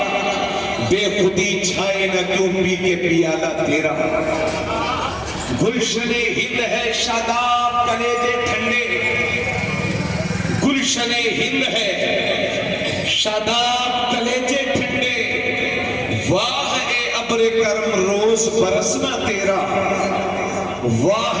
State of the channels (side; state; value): right; noise; hum, 24 dB below the sound